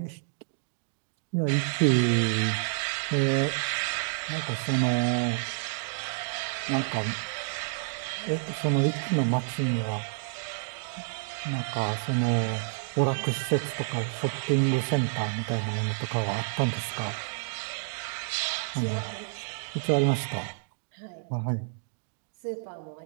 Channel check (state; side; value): silent; left; digital silence